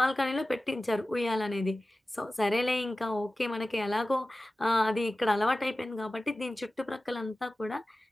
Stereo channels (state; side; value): normal; both; correlation 0.96